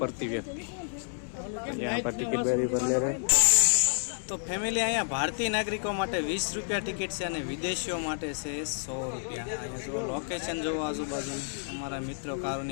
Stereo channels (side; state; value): right; silent; 58 dB below the other